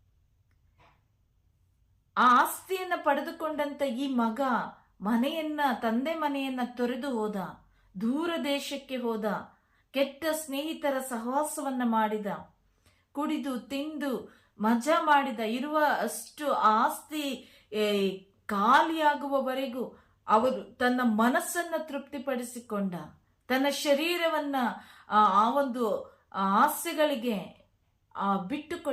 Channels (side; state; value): both; identical; correlation 1.00